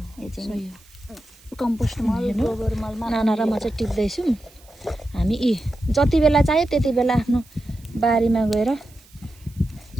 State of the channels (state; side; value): noise; right; hiss, 27 dB below the sound